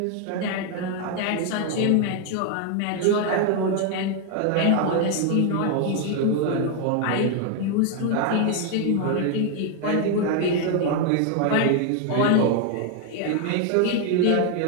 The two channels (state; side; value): different; both; correlation 0.01